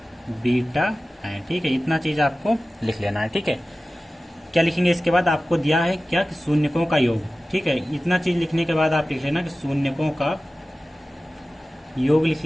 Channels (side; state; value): both; normal; correlation 0.96